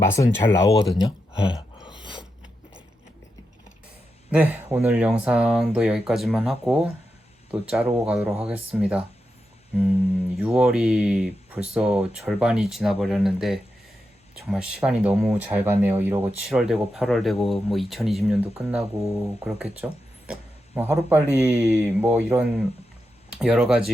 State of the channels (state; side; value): normal; both; correlation 0.87